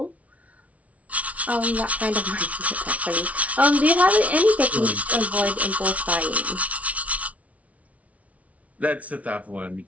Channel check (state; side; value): late; left; 0.067 ms